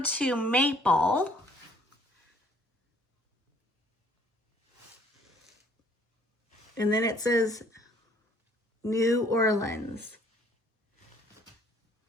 Maple. And then it says New Orleans.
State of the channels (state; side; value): normal; both; correlation 0.59